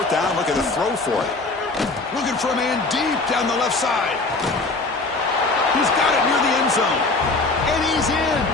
down, look at the throw for it. Looking for a man deep down the left side. He's got it near the end zone. And he's in.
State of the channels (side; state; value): right; quieter; 3.5 dB